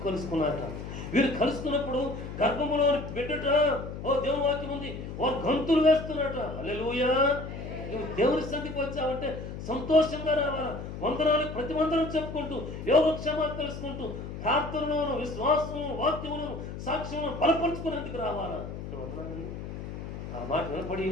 కలుసుకున్నారట. వీరు కలుసుకున్నప్పుడు గర్భములోని బిడ్డట దేవుని వాక్యం ఉంది, వారు గంతులు వేస్తున్నట. హల్లెలూయా! నువ్వు దేవుని సన్నిధికి వచ్చావంటే సంతోషంగా రావాలా. వందనాలు ప్రతి వందనం చెప్పుకుంటూ, యోగక్షేమాలు తెలుసుకుంటూ, ప్రార్థనలోను విశ్వాసము వాక్యములను సాక్ష్యమును బలపరుచుకునేందుకు రావాలా. వందనాలండి. ఆ మాట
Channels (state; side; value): noise; left; hum, 8 dB below the sound